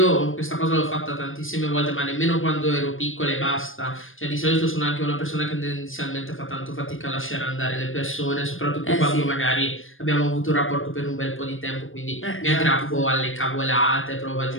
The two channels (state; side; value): late; right; 0.59 ms